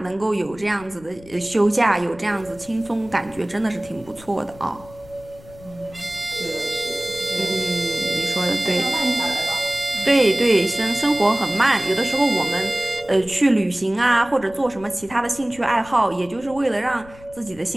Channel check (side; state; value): left; noise; rumble, 21 dB below the sound